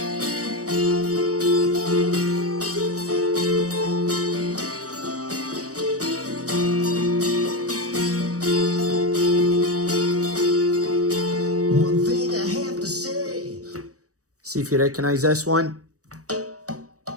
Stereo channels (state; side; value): late; left; 0.66 ms